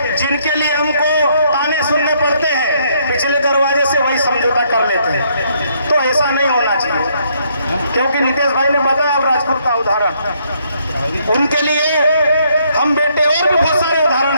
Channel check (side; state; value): both; inverted; correlation -0.70